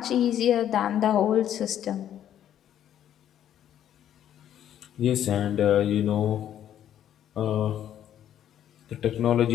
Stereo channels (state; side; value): quieter; right; 10.6 dB